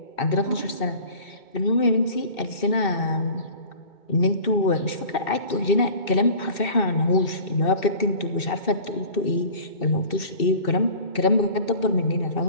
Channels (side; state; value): right; late; 2.7 ms